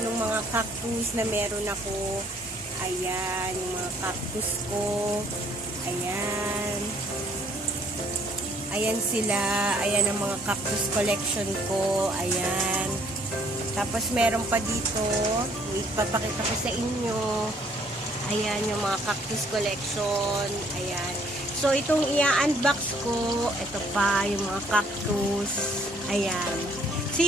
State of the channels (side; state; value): both; normal; correlation 0.63